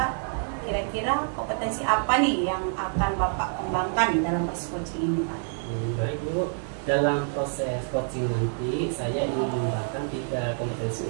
kira-kira kompetensi apa nih yang akan Bapak kembangkan dalam proses coaching ini Pak? Baik Bu, dalam proses coaching nanti saya ingin mengembangkan 3 kompetensi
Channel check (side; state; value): left; silent; 60 dB below the other